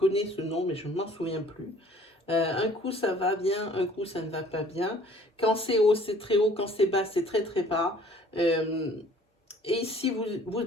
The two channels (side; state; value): both; normal; correlation 0.54